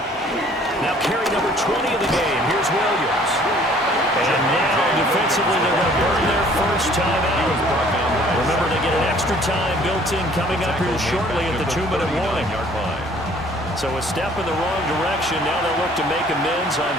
Now carry number 20 of the game. Here's Williams. And now defensively they're going to burn their first time out. Remember, they get an extra time built in coming up here shortly at the 2-minute warning. So a step in the wrong direction. Now they'll look to make amends on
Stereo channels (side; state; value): both; normal; correlation 0.56